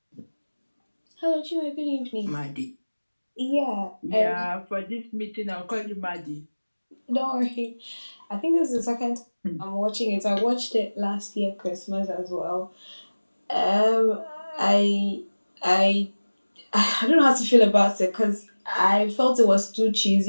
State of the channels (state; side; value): inverted; both; correlation -1.00